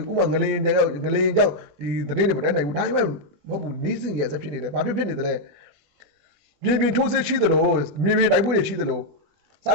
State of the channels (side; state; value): left; late; 21 ms